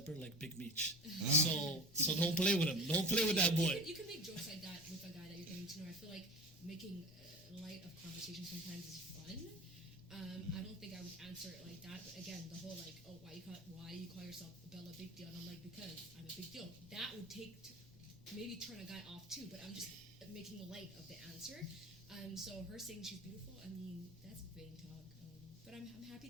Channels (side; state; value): left; noise; rumble, 21 dB below the sound